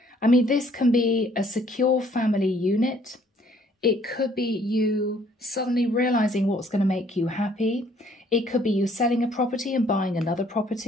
I mean, this can be a secure family unit. It could be you suddenly realizing what's going to make you happy. It could be you selling a property and buying another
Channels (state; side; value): normal; both; correlation 0.61